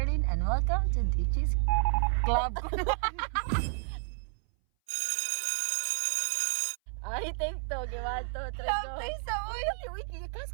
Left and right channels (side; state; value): left; silent; 57 dB below the other